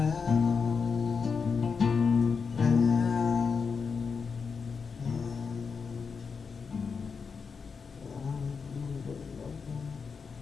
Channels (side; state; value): right; quieter; 5.5 dB